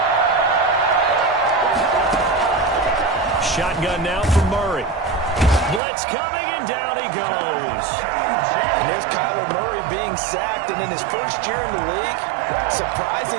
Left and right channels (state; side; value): drops out; left; at 5.8 s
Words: Shotgun now from Murray. Blitz coming, and down he goes. And there's Kyler Murray being sacked, and in his first year in the league,